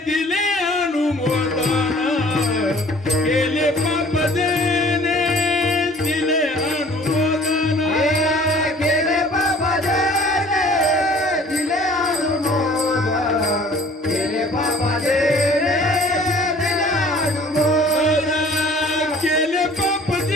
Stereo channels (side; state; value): both; normal; correlation 0.51